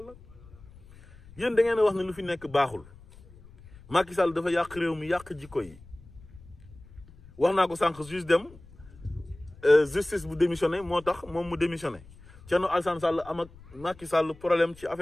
yéen da ngeen a wax ne lu fi nekk baaxul Macky Sall dafa yàq réew mi yàq jikko yi wax naa ko sànq juste dem justice bu démissionné moo tax moom mu démissionné Thierno Alassane Sall am ak Macky Sall problème ci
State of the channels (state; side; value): noise; left; rumble, 22 dB below the sound